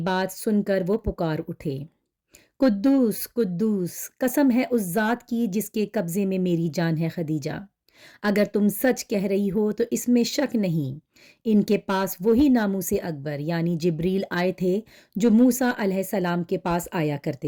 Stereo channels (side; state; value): both; identical; correlation 1.00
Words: سن کر وہ پکار اٹھے، قدوس قدوس، قسم ہے اس ذات کی جس کے قبضے میں میری جان ہے خدیجہ، اگر تم سچ کہہ رہی ہو تو اس میں شک نہیں، ان کے پاس وہی ناموس اکبر یعنی جبریل آئے تھے جو موسیٰ علیہ السلام کے پاس آیا